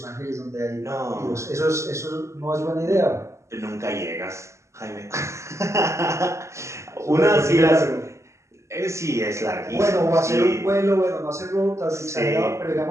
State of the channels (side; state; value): left; late; 0.14 ms